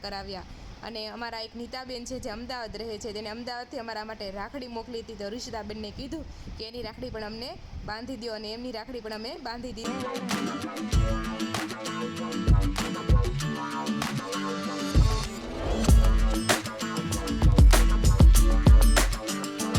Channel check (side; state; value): both; identical; correlation 1.00